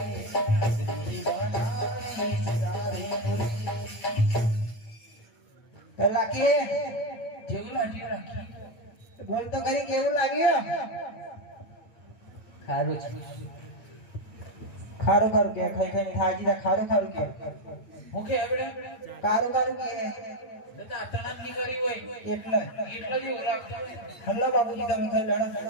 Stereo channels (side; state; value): right; late; 8.9 ms